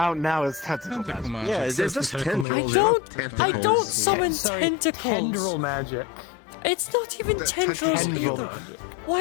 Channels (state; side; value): drops out; right; at 2.5 s